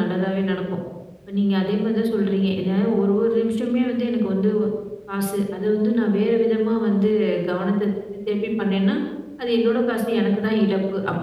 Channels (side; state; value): both; identical; correlation 1.00